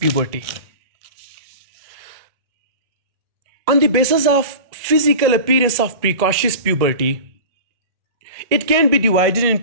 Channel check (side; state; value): left; late; 1.8 ms